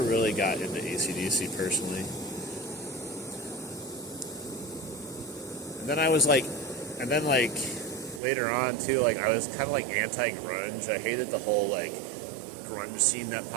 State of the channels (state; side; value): drops out; left; at 8.2 s